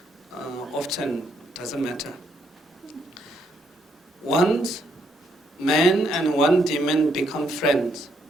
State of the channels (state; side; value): normal; both; correlation 0.74